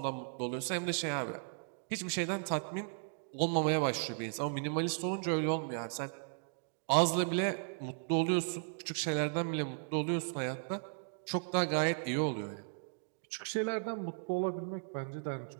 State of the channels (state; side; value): silent; left; digital silence